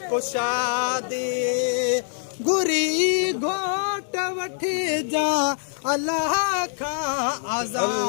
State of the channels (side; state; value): right; silent; digital silence